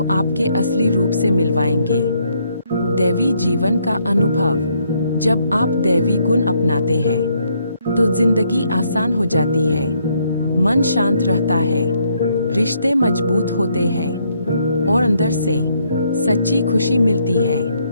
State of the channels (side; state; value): both; inverted; correlation -0.72